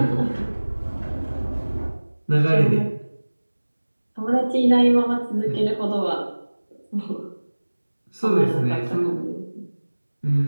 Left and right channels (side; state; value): both; inverted; correlation -1.00